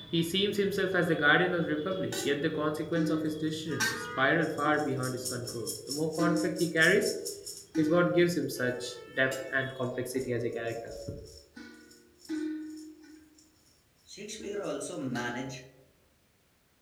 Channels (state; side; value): identical; both; correlation 1.00